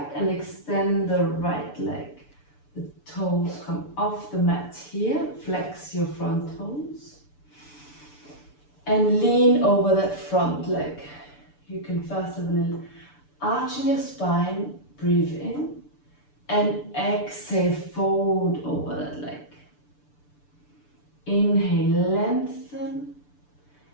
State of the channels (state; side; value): late; right; 6.9 ms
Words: and extend the right leg. The toes come off the mat here. Flex your front toes. And lean over that front leg. You can first have a little arch in your spine. Breathe in. And exhale, fold over that leg. Inhale, lengthen.